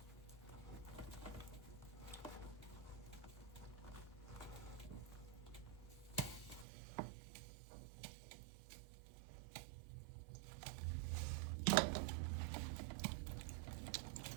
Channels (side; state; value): left; drops out; at 6.7 s